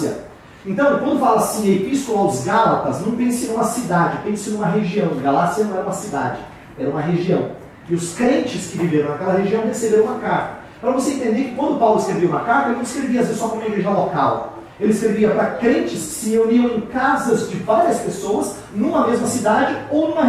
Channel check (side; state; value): both; identical; correlation 1.00